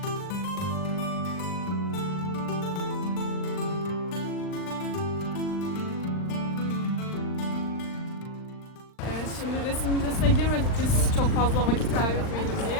Şimdi resim müzesine girmedik biz çok fazla vakit kaybetmeyelim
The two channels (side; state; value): right; late; 39 ms